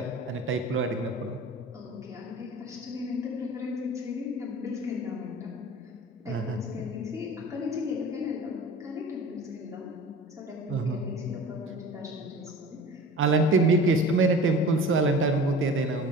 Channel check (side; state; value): both; normal; correlation 0.39